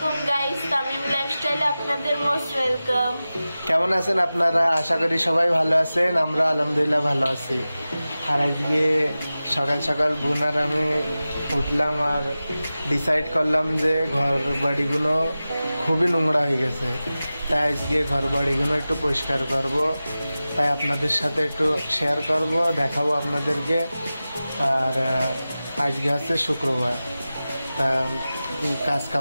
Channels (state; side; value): inverted; both; correlation -0.95